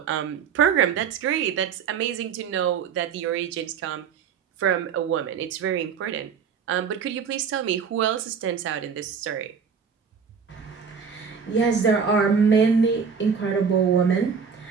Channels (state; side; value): quieter; left; 6.5 dB